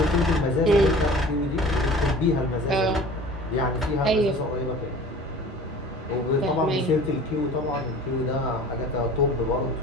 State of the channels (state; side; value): normal; both; correlation 0.43